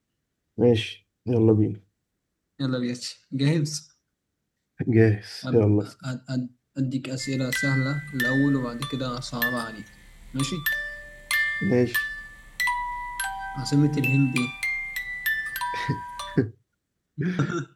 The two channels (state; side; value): identical; both; correlation 1.00